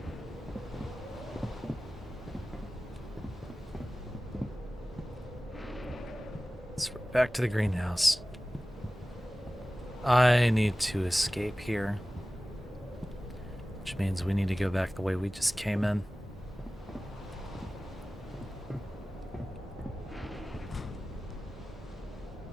So we're back to the greenhouse. I need to escape here. Which means we need to go back the way we just came in.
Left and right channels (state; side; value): normal; both; correlation 0.97